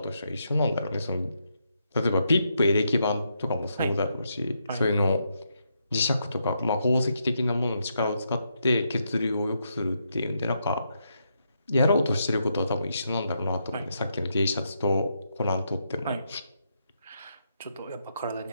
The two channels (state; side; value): inverted; both; correlation -0.80